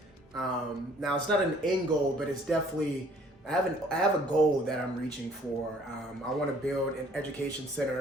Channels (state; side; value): normal; both; correlation 0.58